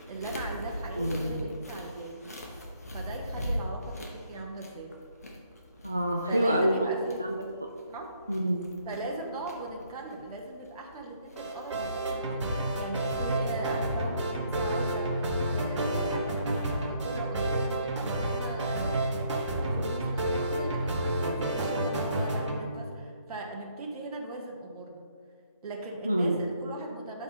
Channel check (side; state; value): both; inverted; correlation -0.68